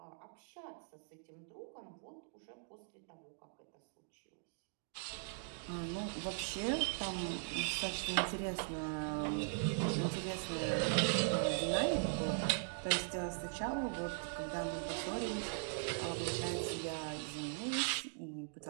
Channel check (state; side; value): silent; left; digital silence